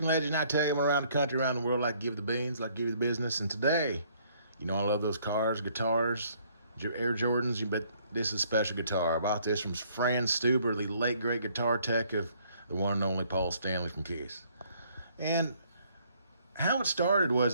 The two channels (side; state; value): both; inverted; correlation -0.63